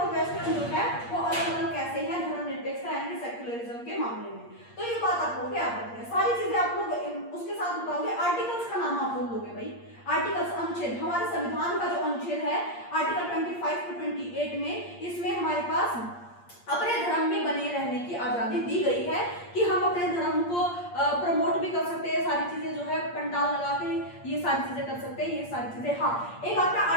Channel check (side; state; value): right; late; 8.6 ms